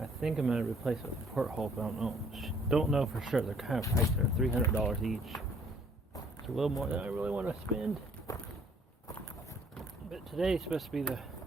think I'm going to replace it with a porthole, but I don't know. Don't know for sure. They're kind of priced. They're $300 each. It's a little more than I really want to spend. But today's supposed to be the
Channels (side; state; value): both; normal; correlation 0.61